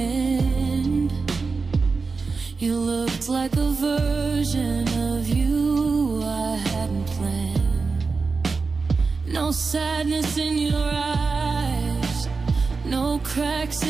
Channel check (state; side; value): quieter; left; 4.4 dB